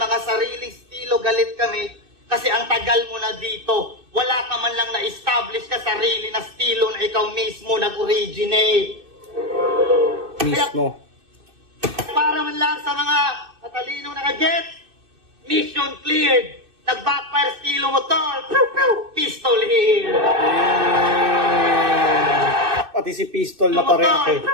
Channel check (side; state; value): left; late; 2.6 ms